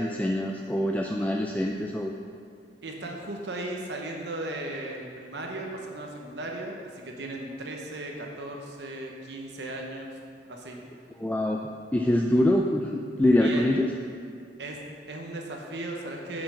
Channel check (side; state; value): both; normal; correlation 0.80